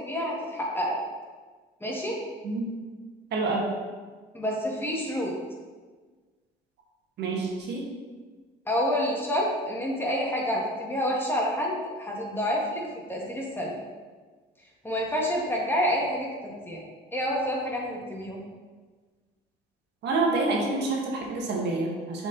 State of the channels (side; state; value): both; normal; correlation 0.35